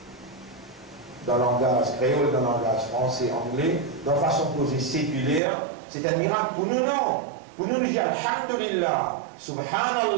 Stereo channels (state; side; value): drops out; left; at 5.4 s